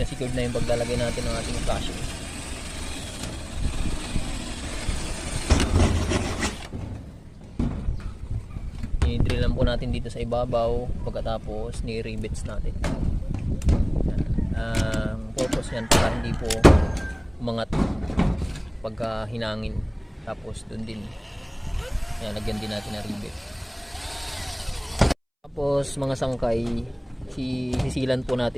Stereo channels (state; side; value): identical; both; correlation 1.00